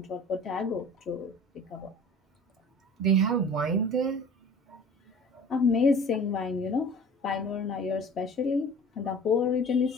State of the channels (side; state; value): both; normal; correlation 0.44